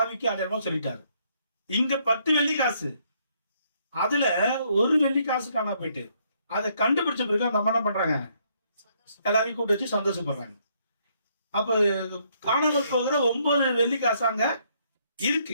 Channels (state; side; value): inverted; both; correlation -0.70